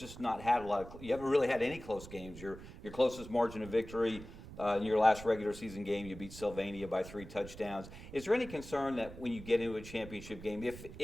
not had you haven't really had any close games. Your closest margin of victory in your last regular season game, you beat Sylvania by 3 touchdowns. Is there any concern that when you get into a championship game,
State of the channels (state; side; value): noise; right; rumble, 14 dB below the sound